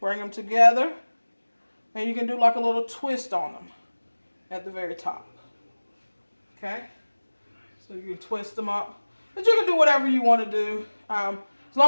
them together, and you can do like a little twist on them at the very top. Okay? So you can twist them up. But you can do whatever you want to do. As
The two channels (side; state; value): both; inverted; correlation -1.00